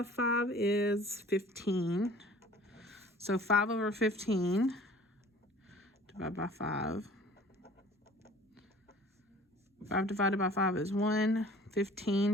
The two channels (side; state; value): both; normal; correlation 0.49